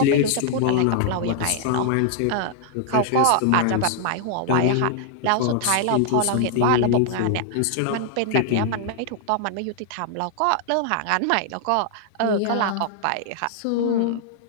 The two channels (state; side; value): different; both; correlation 0.00